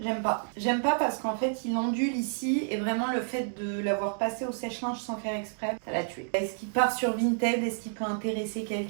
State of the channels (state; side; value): silent; left; digital silence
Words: pas. J'aime pas parce qu'en fait, il ondule ici et vraiment le fait de l'avoir passé au sèche-linge sans faire exprès, ça l'a tué. Est-ce qu'il part sur Vinted? Est-ce qu'il peut intéresser